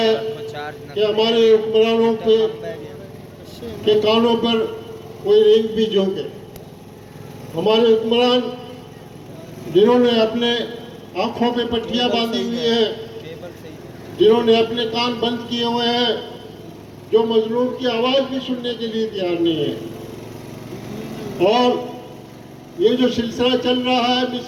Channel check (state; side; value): identical; both; correlation 1.00